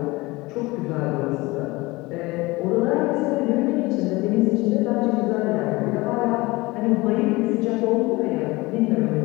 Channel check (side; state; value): right; quieter; 22.1 dB